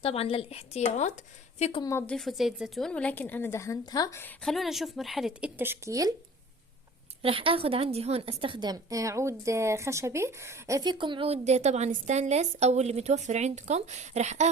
طبعا للاحتياط. فيكم ما تضيفوا زيت زيتون، ولكن انا دهنتها. خلونا نشوف مرحلة التشكيل. راح اخذ عندي هون استخدم عود خشبي. فيكم عود طبعا ستانلس او اللي متوفر عندكم. راح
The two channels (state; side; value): normal; both; correlation 0.45